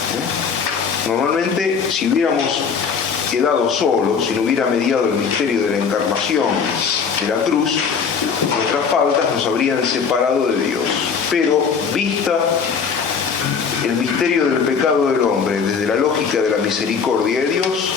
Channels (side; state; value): right; quieter; 6.1 dB